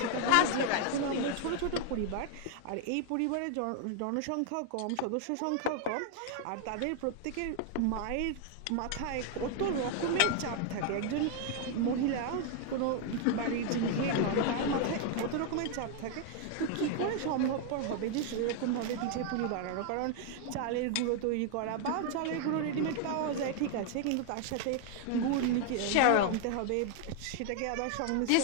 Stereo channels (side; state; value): both; different; correlation 0.00